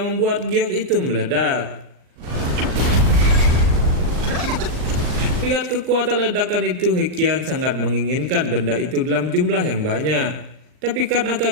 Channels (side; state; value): left; late; 39 ms